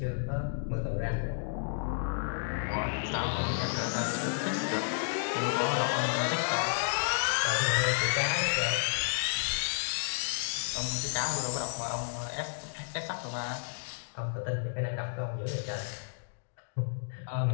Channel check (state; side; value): silent; right; digital silence